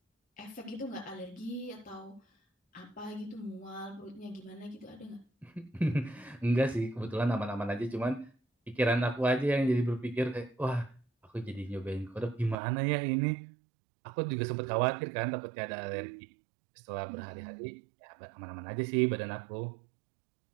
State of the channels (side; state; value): left; drops out; at 12.6 s